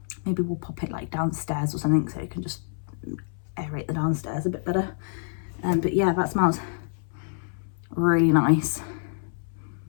Maybe we'll pop it like downstairs or something so it can just aerate the downstairs a bit better. But yeah, that smells really nice.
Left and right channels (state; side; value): silent; right; 60 dB below the other